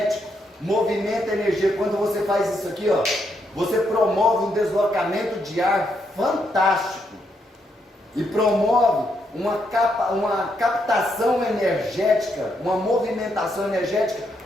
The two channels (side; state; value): both; normal; correlation 0.78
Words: movimenta energia. Quando você faz isso aqui, ó, você promove um deslocamento de ar fantástico. E promove uma captação energética, uma movimentação energética